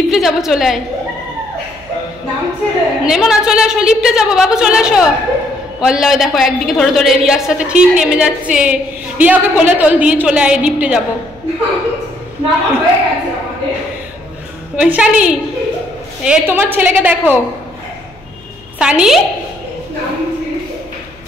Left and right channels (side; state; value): left; noise; hum, 26 dB below the sound